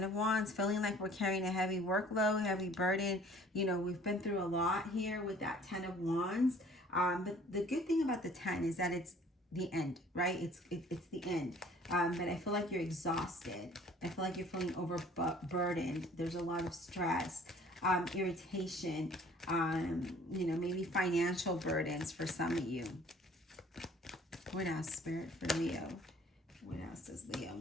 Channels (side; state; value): both; normal; correlation 0.53